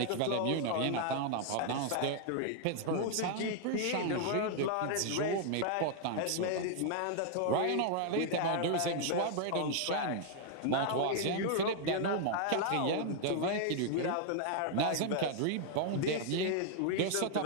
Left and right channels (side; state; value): both; different; correlation 0.00